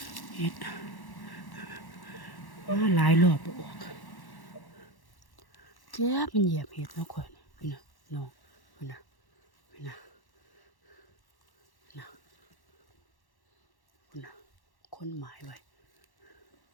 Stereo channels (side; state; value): right; late; 1.1 ms